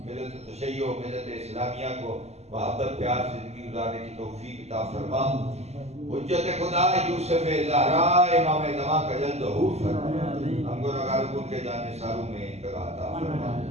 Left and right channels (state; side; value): late; left; 0.31 ms